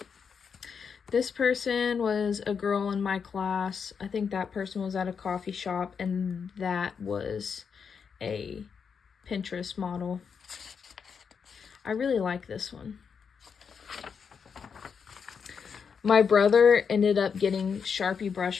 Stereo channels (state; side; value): quieter; right; 6.3 dB